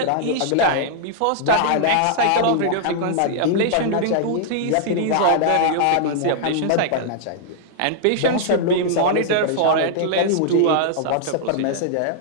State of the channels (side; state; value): both; different; correlation -0.01